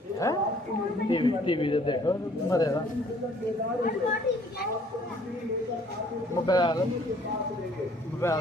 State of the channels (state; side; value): normal; both; correlation 0.59